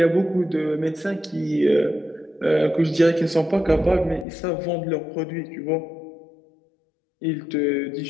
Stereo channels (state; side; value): drops out; right; at 4.2 s